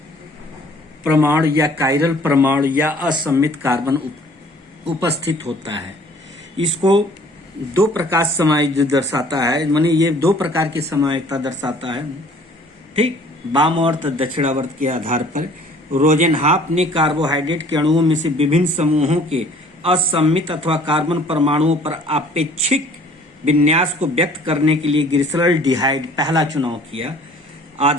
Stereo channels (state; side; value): normal; both; correlation 0.54